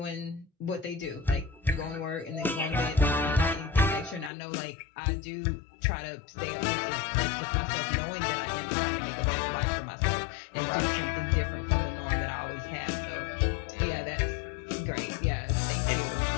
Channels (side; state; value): right; drops out; at 4.3 s